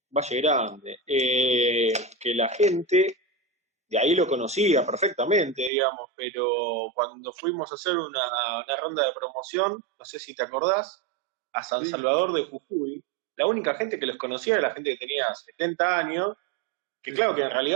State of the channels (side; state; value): left; drops out; at 5.7 s